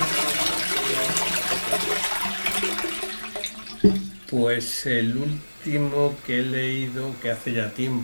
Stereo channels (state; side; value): inverted; both; correlation -1.00